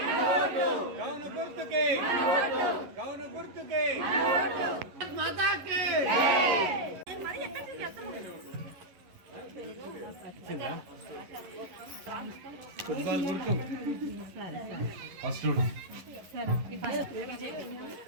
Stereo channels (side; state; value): left; late; 11 ms